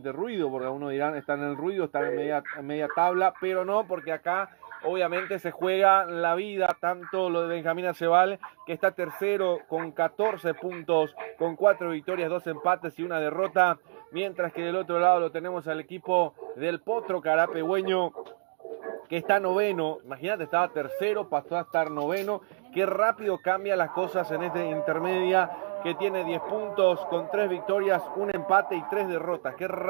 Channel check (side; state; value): left; silent; digital silence